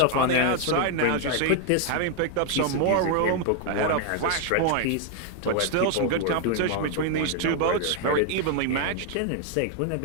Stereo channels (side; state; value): both; different; correlation 0.00